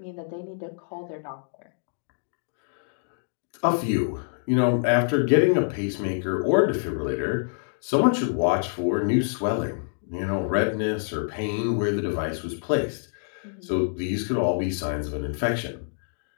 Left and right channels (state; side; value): silent; right; digital silence